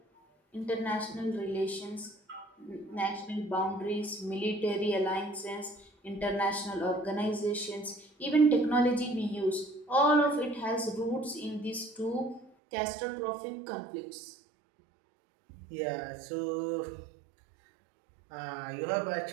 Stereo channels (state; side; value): drops out; left; at 12.5 s